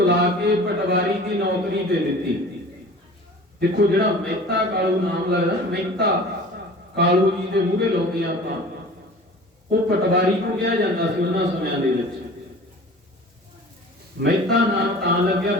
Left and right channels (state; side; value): normal; both; correlation 0.42